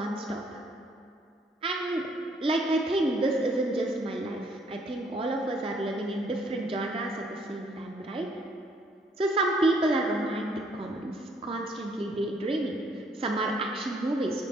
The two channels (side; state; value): both; normal; correlation 0.66